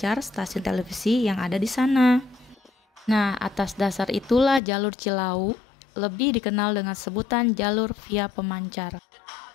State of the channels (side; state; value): right; drops out; at 4.6 s